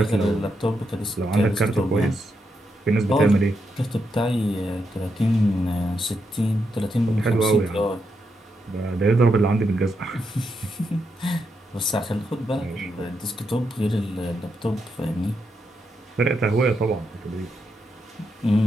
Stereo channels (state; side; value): normal; both; correlation 0.82